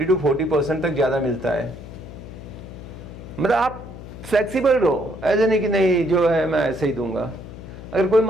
तक ज़्यादा मिलता है। मतलब आप फ्लेक्सिबल रहो, ऐसे नहीं कि नहीं जो है मैं ऐसे ही दूंगा। अगर कोई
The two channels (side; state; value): left; noise; hum, 13 dB below the sound